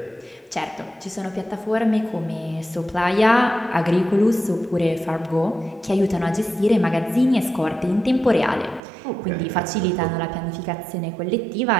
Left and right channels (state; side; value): drops out; left; at 8.8 s